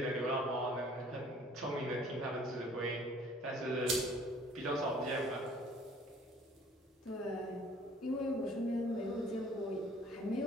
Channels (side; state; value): both; normal; correlation 0.54